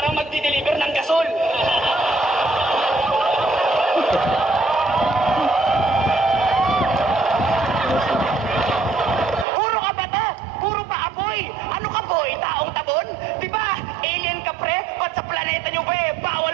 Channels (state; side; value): drops out; left; at 9.5 s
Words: magdi-deliver ng gasol. Puro ka ba to? Puro pa apoy? Ano ka boy? Taong tabon? Di ba? Alien ka pre? Ba't sa planeta nyo ba